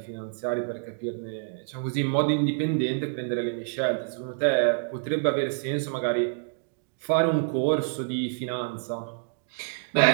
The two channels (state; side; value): silent; left; digital silence